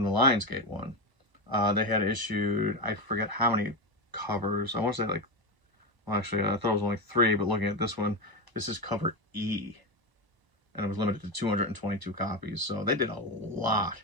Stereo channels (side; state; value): left; late; 1.0 ms